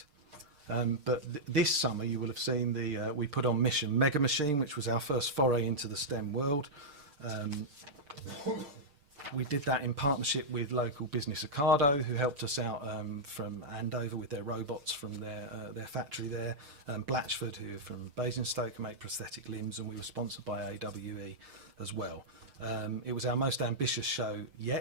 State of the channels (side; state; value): left; late; 6.6 ms